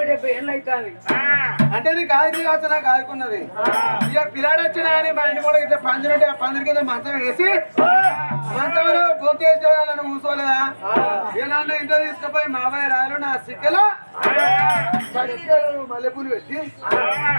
అంటే నీకు ఆది కావచ్చు నాకు ఆదుకున్నది ఇక పిల్లాడు వచ్చినా అని మా ఇంటి కూడా ఇట్లా పందిరి ఉంటే ఆ పందిరి కింద మంచం వేసి మంచంలో గొంతు వేసుకోవాలని కూర్చోలేదా ఇక నన్ను ఇంట్లో తీసుకుపోయి మామయ్య రాయలు నా సిక్కలో మల్లెపూలు పెట్టి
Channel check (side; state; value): both; inverted; correlation -1.00